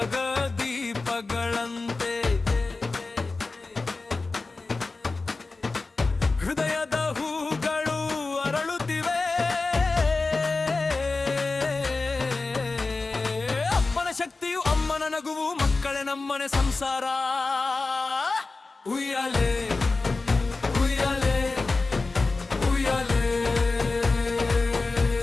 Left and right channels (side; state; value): right; quieter; 3.7 dB